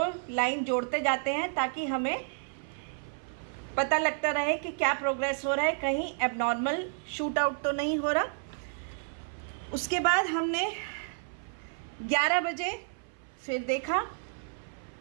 लाइन जोड़ते जाते हैं ताकि हमें पता लगता रहे कि क्या प्रोग्रेस हो रहा है, कहीं एबनॉर्मल शूट आउट तो नहीं हो रहा। उसके बाद हमने 11 बजे फिर देखा,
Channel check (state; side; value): silent; left; 55 dB below the other